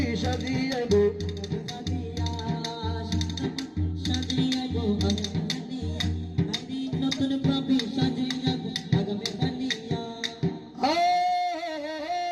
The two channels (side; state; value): both; identical; correlation 1.00